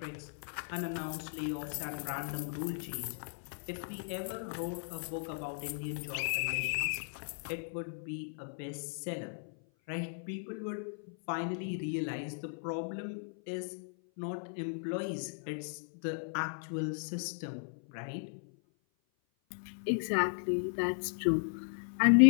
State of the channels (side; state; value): right; silent; 53 dB below the other